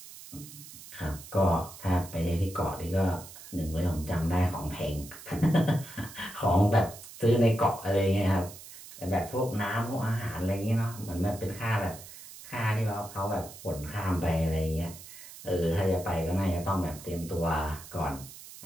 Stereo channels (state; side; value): noise; right; hiss, 16 dB below the sound